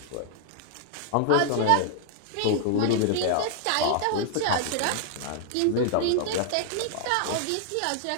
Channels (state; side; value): different; both; correlation 0.00